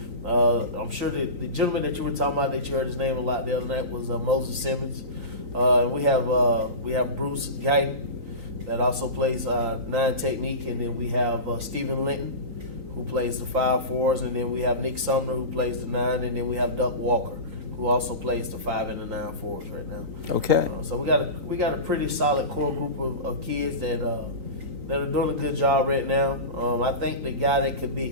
I'm sure the gentleman that you were talking about, that you heard his name a lot the other night, was Moses Simmons. We have Bruce Guyton that also plays 9 technique, and then we have Stephen Linton, who plays the 5-4s, and then we have Nick Sumner, who plays the 9, and then we have Duck Walker, who also plays the 5 and the 9-4s right now. Okay. So we got a pretty solid core group of kids that are doing a good job right now. I think the guy that could be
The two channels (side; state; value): left; late; 3.9 ms